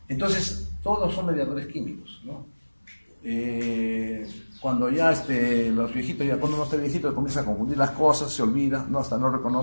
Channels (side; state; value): both; inverted; correlation -1.00